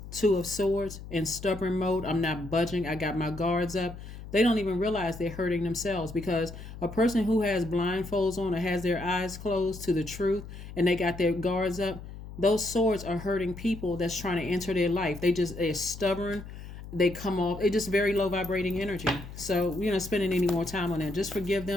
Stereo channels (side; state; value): left; noise; hum, 13 dB below the sound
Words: Two of Swords, in stubborn mode, I'm not budging, I got my guards up, they don't even realize they're hurting themselves, because a person who has blindfolds on or has their eyes closed to the truth and they got their guards up, those swords are hurting people that's trying to enter their life. They're stubborn. They come off. It's just very low vibrating energy. So we're not spending any more time on that. Just forgive